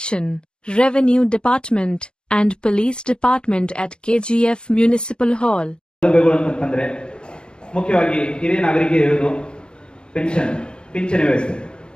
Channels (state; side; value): late; right; 0.051 ms